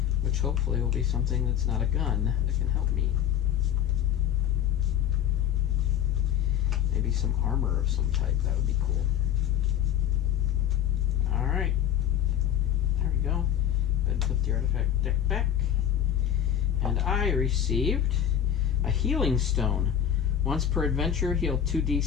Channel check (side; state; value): right; quieter; 9.8 dB